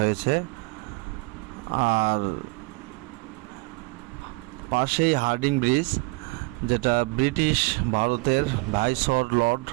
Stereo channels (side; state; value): left; quieter; 26.5 dB